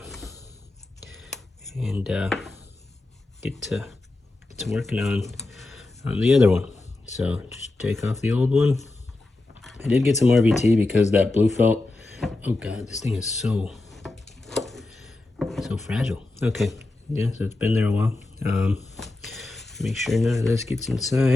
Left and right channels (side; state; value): right; quieter; 3.0 dB